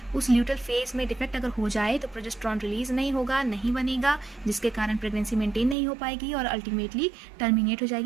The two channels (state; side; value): drops out; left; at 5.8 s